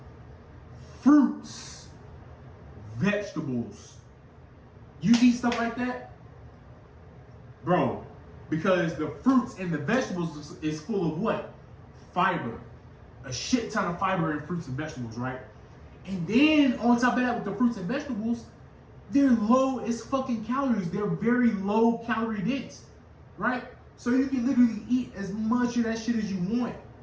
Fruits, vegetables. You eat stuff like that, bro, because the fruits and the vegetables is full of what? Fiber. A shit ton of fiber in fruits and vegetables, right? And then on top of that, with the fruits and vegetables, they're low as fucking calories. They're very low calorie dense, right? So you can literally eat as much of that shit as you want,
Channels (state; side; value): identical; both; correlation 1.00